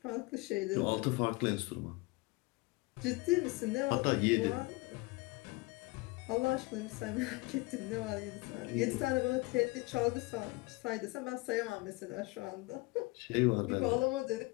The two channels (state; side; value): quieter; right; 24.3 dB